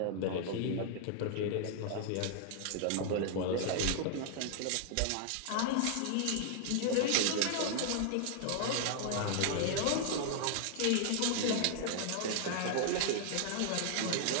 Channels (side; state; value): both; different; correlation 0.00